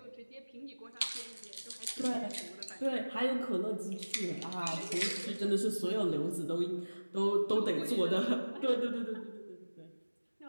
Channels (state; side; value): inverted; both; correlation -1.00